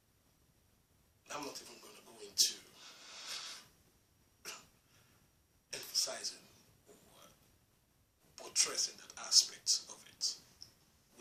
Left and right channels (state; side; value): identical; both; correlation 1.00